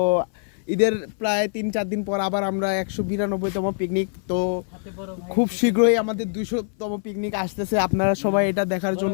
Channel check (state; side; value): silent; right; 58 dB below the other